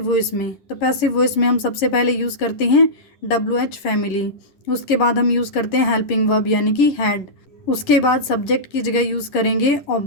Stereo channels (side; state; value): right; late; 10 ms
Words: वॉइस में। तो पैसिव वॉइस में हम सबसे पहले यूज़ करते हैं WH फैमिली। उसके बाद हम यूज़ करते हैं हेल्पिंग वर्ब यानी कि हैड। उसके बाद सब्जेक्ट की जगह यूज़ करेंगे